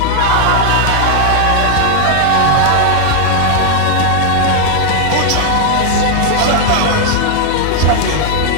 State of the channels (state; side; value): different; both; correlation 0.00